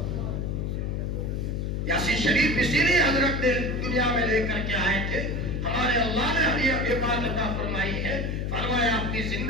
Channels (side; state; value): left; noise; hum, 1 dB below the sound